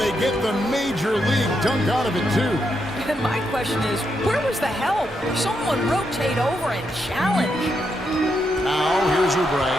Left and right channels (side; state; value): both; normal; correlation 0.81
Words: they get the major league dunk out of it, too. And my question is, where was the help? Someone rotate over and challenge. Now, here's Oubre.